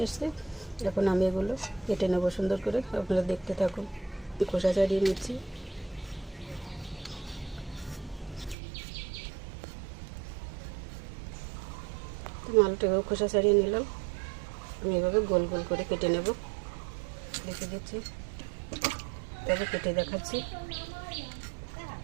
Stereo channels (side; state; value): left; drops out; at 8.6 s